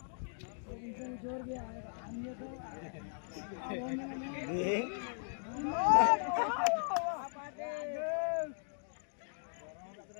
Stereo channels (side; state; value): right; silent; digital silence